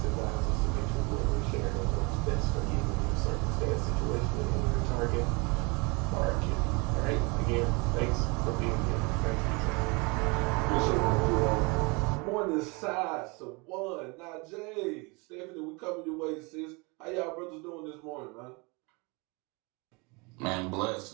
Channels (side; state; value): left; quieter; 28.8 dB